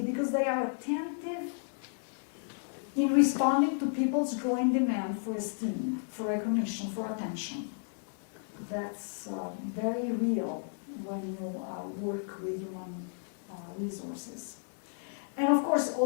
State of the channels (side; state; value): right; silent; digital silence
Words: because they are attentive in responding to people's growing demand for esteem, for recognition, for attention. That's very real when you work with human resources. And of course,